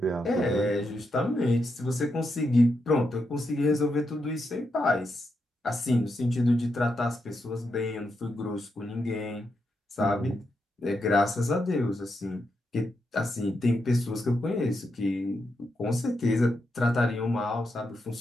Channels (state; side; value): normal; both; correlation 0.84